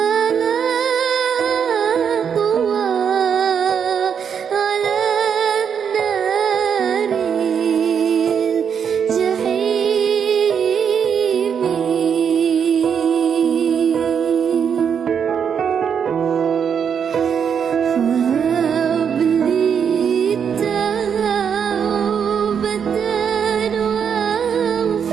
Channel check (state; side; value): quieter; left; 7.4 dB